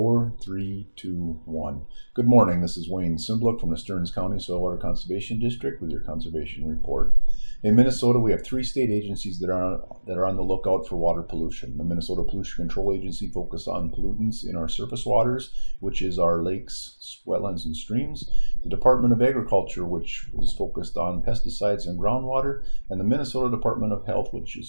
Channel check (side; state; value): both; inverted; correlation -1.00